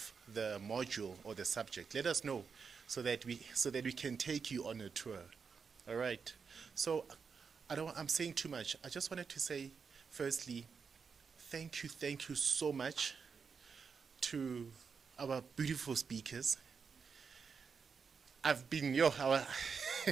the module or the subject, let us know so that we can take you on a tour. All right. So I'm saying too much. I just wanted to say, firstly, thank you so much to our beautiful speakers. I'm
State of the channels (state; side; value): quieter; left; 5.7 dB